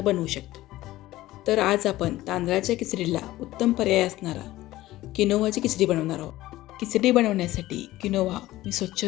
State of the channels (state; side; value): quieter; right; 16.4 dB